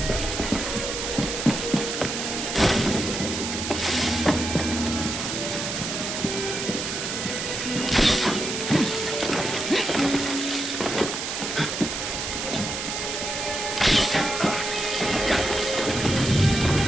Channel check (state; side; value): noise; right; hiss, 4 dB below the sound